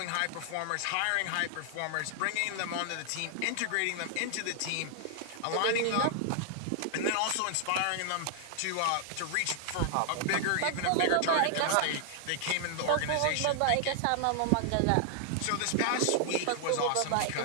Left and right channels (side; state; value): both; different; correlation -0.01